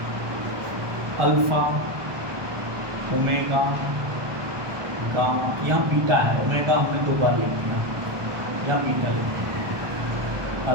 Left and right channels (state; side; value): late; left; 1.2 ms